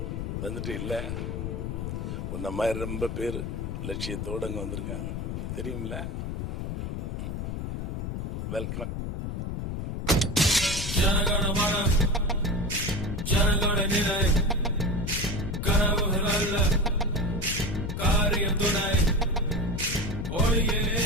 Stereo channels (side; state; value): left; noise; rumble, 4 dB below the sound